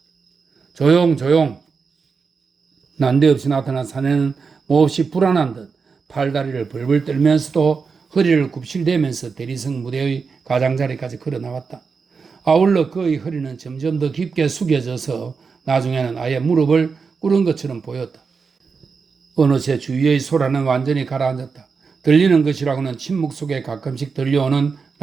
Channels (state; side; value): quieter; left; 5.2 dB